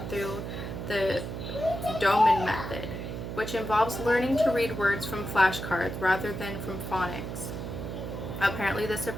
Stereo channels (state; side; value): noise; right; hum, 6 dB below the sound